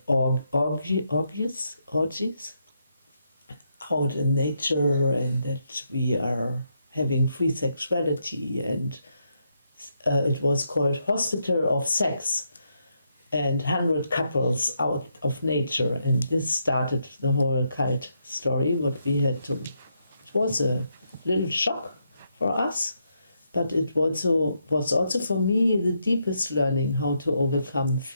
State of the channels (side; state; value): both; inverted; correlation -0.80